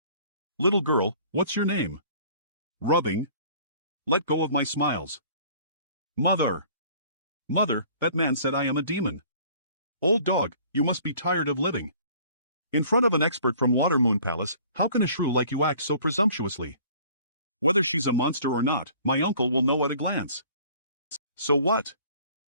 Little girl, what's your name? Rubbing. Let go of my Smiles. Mother. Mother, that man said I am a demon. Old dog, you must be tired of living. In front of an expert from Watermoon Palace, how can a shrew like you act so presumptuously? Whether she's a monster or not, my uncle will know at a glance. So what?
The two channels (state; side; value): inverted; both; correlation -0.52